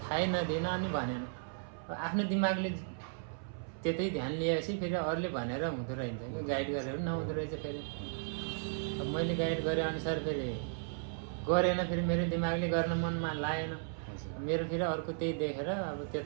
नदिएन अनि भनेन। आफ्नो दिमागले त्यतै ध्यान लिएपछि फेरि अरूले भनेर हुँदो रहेछ, गाइड गरेर नहुँदो रहेछ। फेरि अब मैले गाइड गरे अनुसार फेरि गरेन, फेरि मेरो दिमागले गर्न मनमा लागेन मेरो। फेरि अर्को त्यही देखेर अब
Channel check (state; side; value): silent; left; 54 dB below the other